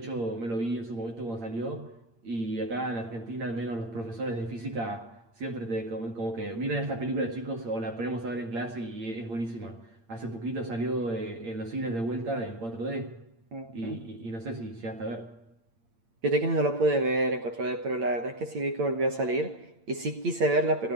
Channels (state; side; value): late; left; 8.7 ms